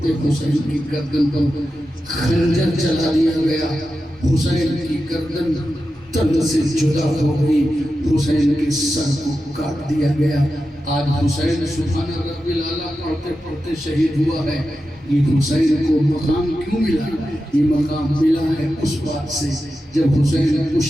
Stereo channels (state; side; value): normal; both; correlation 0.91